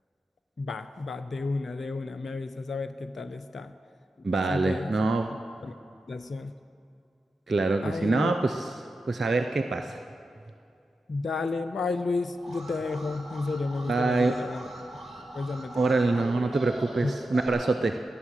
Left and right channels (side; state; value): both; normal; correlation 0.89